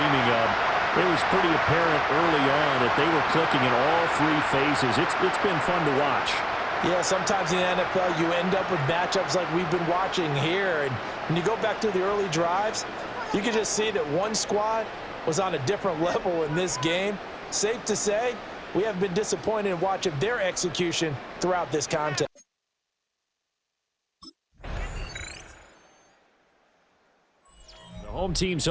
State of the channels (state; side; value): identical; both; correlation 1.00